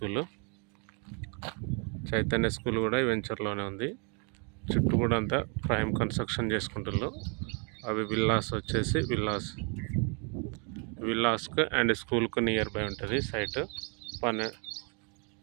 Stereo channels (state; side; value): quieter; left; 36.1 dB